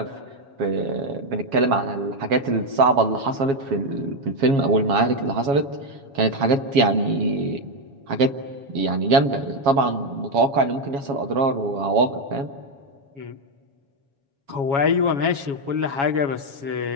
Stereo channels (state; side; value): late; left; 7.2 ms